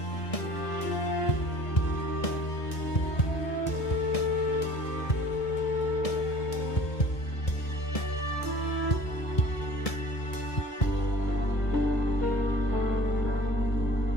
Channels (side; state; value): right; late; 1.7 ms